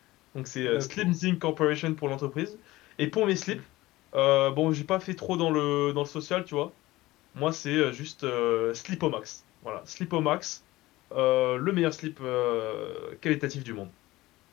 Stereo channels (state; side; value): quieter; right; 18.4 dB